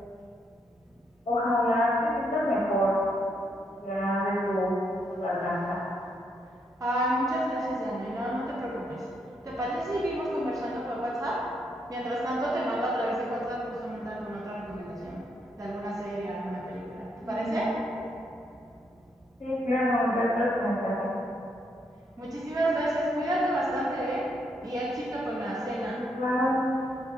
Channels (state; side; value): normal; both; correlation 0.76